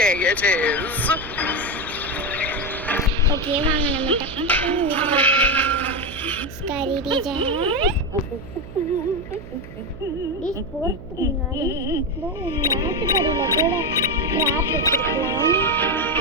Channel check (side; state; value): right; noise; hum, 14 dB below the sound